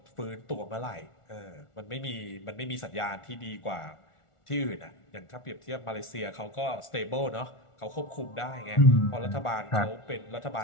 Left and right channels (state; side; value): late; right; 1.4 ms